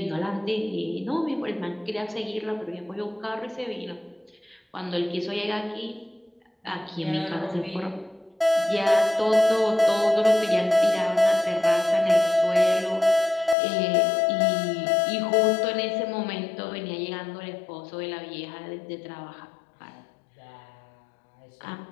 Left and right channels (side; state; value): right; drops out; at 13.6 s